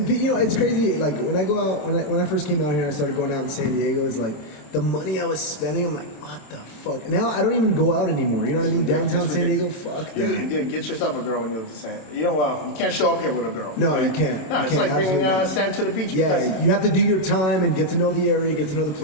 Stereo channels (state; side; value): late; right; 27 ms